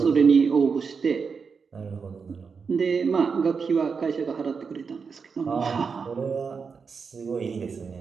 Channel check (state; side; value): quieter; left; 5.5 dB